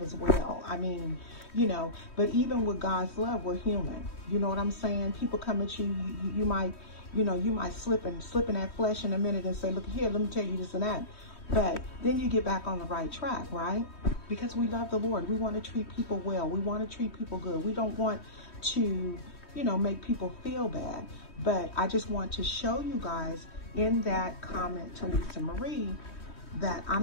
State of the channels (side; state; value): right; late; 3.1 ms